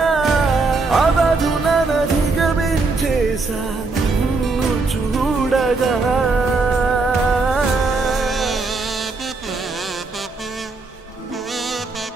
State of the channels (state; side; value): quieter; left; 3.8 dB